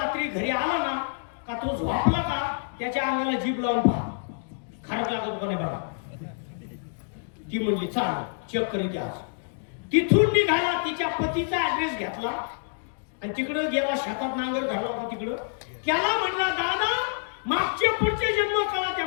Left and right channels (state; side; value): silent; right; digital silence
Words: घरी आला ना का तो झोपला का त्याच्या अंगाला जीभ लावून पहा, खारक लागत का नाही बघा. ती म्हणली चाल चेक करीत आज. तिथून निघाला, तिच्या पतीचा ऍड्रेस घेतला आणि तिकडं गेला, शेतात नांगर घालला होता तिकडं. त्याला म्हणला दादा मागचे पुढचे जन्म कळा त्या,